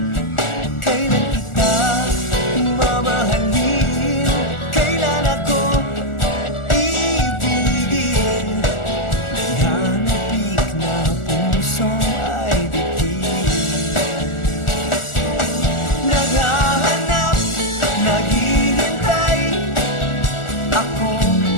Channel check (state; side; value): late; right; 1.4 ms